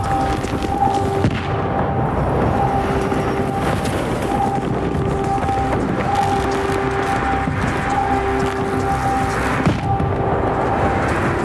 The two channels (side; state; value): both; identical; correlation 1.00